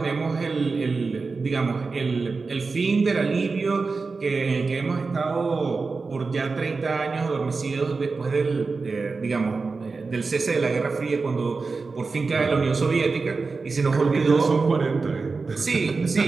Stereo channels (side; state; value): left; quieter; 4.2 dB